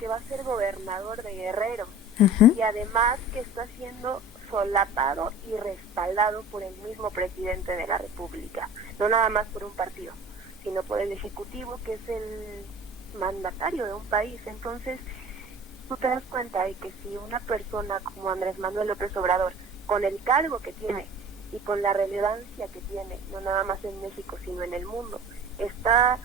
va a ser gobernador de Guerrero, y además que está siendo solapado y respaldado por el mismo presidente de la República, no nada más por un partido, sino por el Ejecutivo, que es el mandatario de un país. Entonces, tú te das cuenta de que si una persona como Andrés Manuel López Obrador, con el cargo que tiene y con la relevancia que tiene, no nada más en México, sino en el mundo, está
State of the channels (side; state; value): both; normal; correlation 0.42